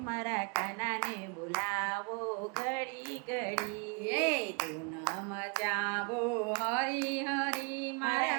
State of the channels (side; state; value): left; quieter; 33.9 dB